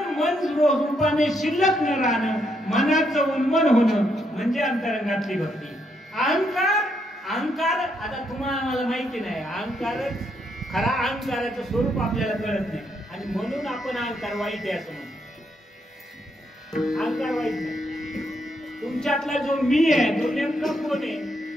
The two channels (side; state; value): both; normal; correlation 0.76